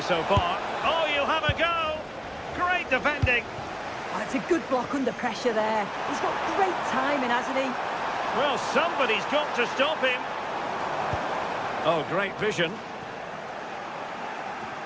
so far. Oh, you'll have a go. Great defending. Oh, it's a good block under pressure there. He's got great timing, hasn't he? Well, somebody's got to stop him. Oh, great vision.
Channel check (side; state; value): both; identical; correlation 1.00